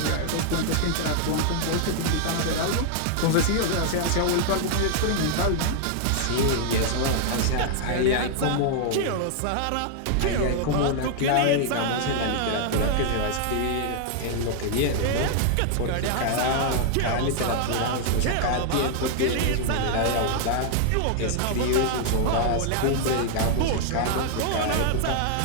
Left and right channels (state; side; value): different; both; correlation 0.00